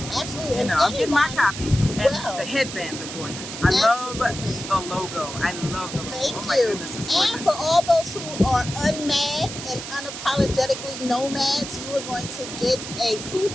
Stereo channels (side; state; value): right; noise; hiss, 9 dB below the sound